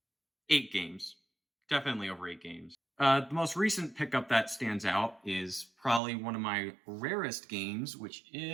8 games. Definitely over 8 games. The most recent pickup that stands out is probably one of my rarest games, which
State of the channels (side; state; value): left; drops out; at 6.0 s